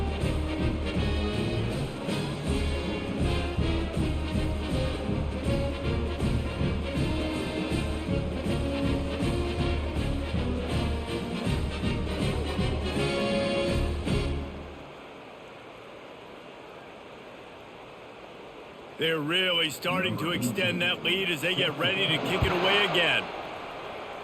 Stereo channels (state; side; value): identical; both; correlation 1.00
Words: They're really starting to extend that lead as they get ready to kick it away again.